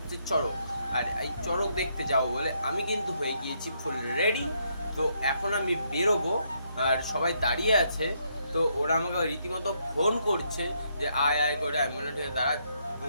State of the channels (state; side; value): inverted; both; correlation -0.75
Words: চড়ক, আর এই চড়ক দেখতে যাবো বলে আমি কিন্তু হয়ে গিয়েছি ফুল রেডি। তো এখন আমি বেরোবো, আর সবাই দাঁড়িয়ে আছে। তো ওরা আমাকে রীতিমতো ফোন করছে যে আয় আয় করে। আমি বললাম ঠিক আছে, দাঁড়া 2